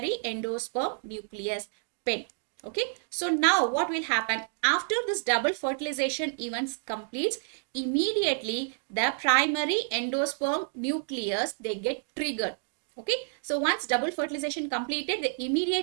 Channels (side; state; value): left; silent; digital silence